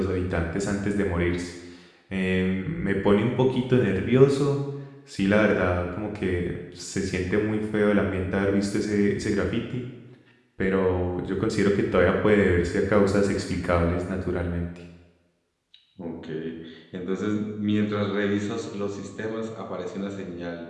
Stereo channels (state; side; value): identical; both; correlation 1.00